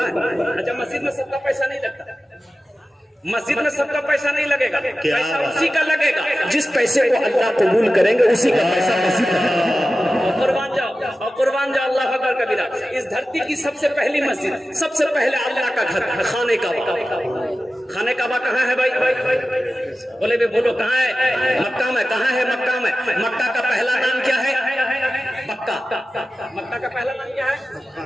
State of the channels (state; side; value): normal; both; correlation 0.94